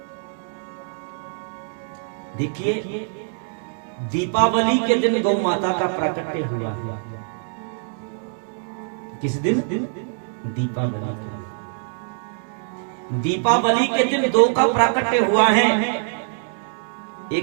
देखिए, दीपावली के दिन गौ माता का प्राकट्य हुआ है। किस दिन? दीपावली के दिन। दीपावली के दिन 2 का प्राकट्य हुआ है,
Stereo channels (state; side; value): silent; left; digital silence